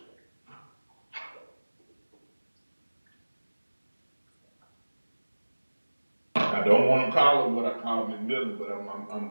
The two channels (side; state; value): both; inverted; correlation -1.00